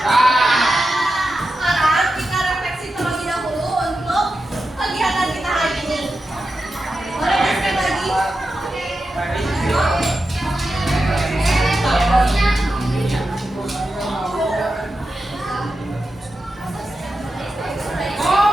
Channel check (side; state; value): both; normal; correlation 0.90